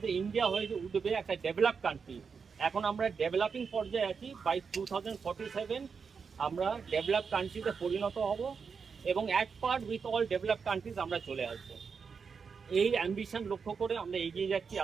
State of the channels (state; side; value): quieter; left; 5.7 dB